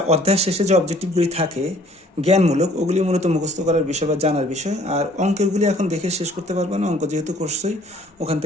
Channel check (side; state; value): both; normal; correlation 0.57